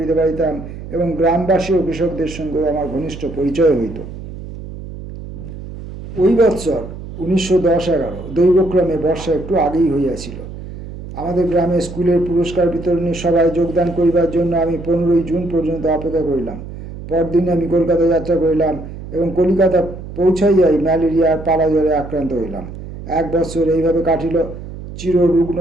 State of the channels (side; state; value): right; noise; hum, 12 dB below the sound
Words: পারিতাম এবং গ্রামবাসী ও কৃষকদের সঙ্গেও আমার ঘনিষ্ঠ পরিচয় হইত। ওই বৎসর 1910-11 দৈবক্রমে বর্ষা একটু আগেই হইয়াছিল। আমাদের গ্রামে স্কুলের পুরস্কার বিতরণী সভায় যোগদান করিবার জন্য আমি 15 জুন পর্যন্ত অপেক্ষা করিলাম। পরদিন আমি কলকাতা যাত্রা করিলাম এবং কলিকাতা পৌঁছাইয়াই ম্যালেরিয়ার পালা জ্বরে আক্রান্ত হইলাম। 1 বৎসর এইভাবে কাটিল। চিররুগ্ন